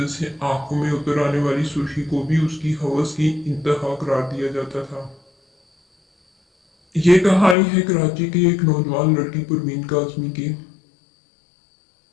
से आंखों में उतर आने वाली सुर्खी को भी उसकी हवस की इंतहा करार दिया जाता था। ये कहानी है कराची की एक नौजवान लड़की परवीन काज़मी की,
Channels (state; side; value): drops out; right; at 7.6 s